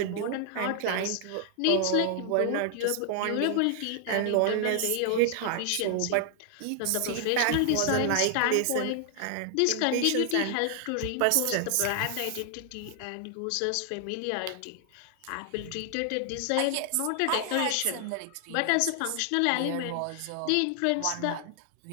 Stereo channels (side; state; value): both; different; correlation 0.00